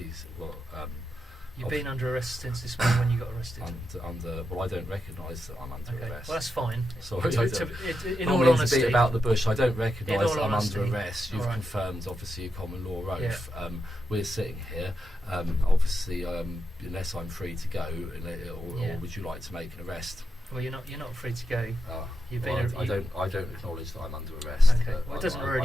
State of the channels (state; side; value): normal; both; correlation 0.86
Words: Well, You've been under arrest since this morning when you got arrested. well, I don't recognise that I'm under Okay, arrest. well that's fine. Sorry, In I all don't mean to honesty, beat about the bush. I don't recognise all that I'm honesty, under arrest. You've all right. confirmed, obviously, a common law oath. Yeah. We're sitting here. Obviously, unless I'm free to go, or would you like to make an arrest? well, you're not free to go. You've Well, been. I don't acknowledge that I'm under arrest. Okay, well, it doesn't